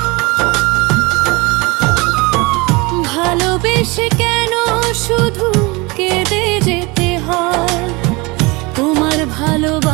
ভালোবেসে কেন শুধু কেঁদে যেতে হয়? তোমার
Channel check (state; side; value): quieter; left; 25.4 dB